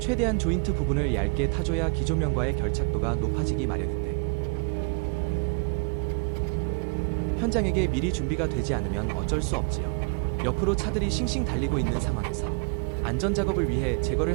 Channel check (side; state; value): left; quieter; 36.0 dB